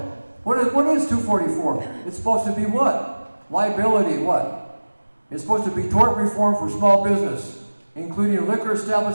What is 244? It's supposed to be what? Liability, what? It's supposed to be tort reform for small business, including liquor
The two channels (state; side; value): inverted; both; correlation -1.00